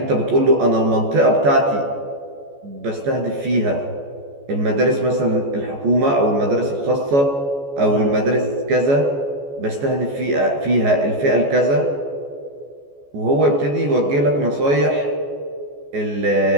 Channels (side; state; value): left; late; 14 ms